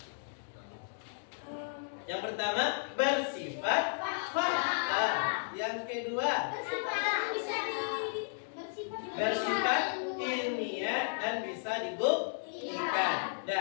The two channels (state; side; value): silent; right; digital silence